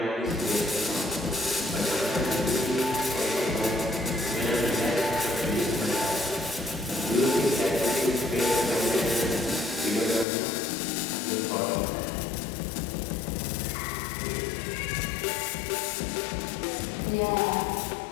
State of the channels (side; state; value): right; drops out; at 10.2 s